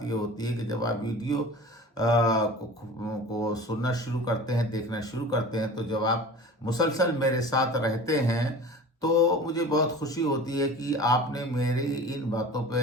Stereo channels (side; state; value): both; normal; correlation 0.38